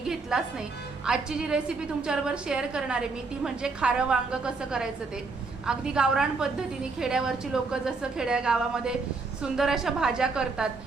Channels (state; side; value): quieter; left; 4.1 dB